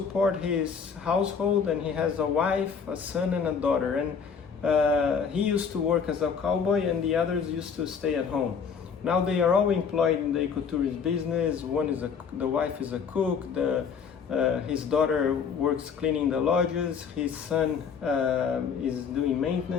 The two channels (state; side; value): quieter; right; 6.4 dB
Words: his household, and he has a wife, a son, and a daughter, and he used to work as a cowboy, and the others used to stay at home. Now they are all employed in the ecotourism business. The wife is a cook. His daughter works cleaning the lodges. His son is doing